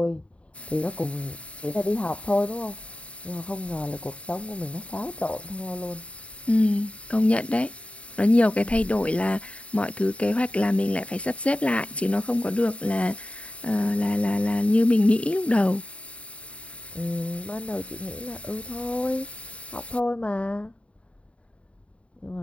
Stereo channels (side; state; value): right; late; 0.062 ms